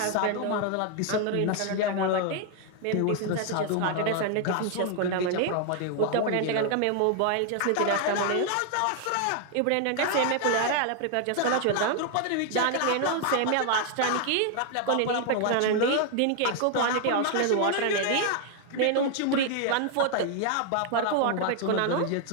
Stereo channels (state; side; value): different; both; correlation 0.00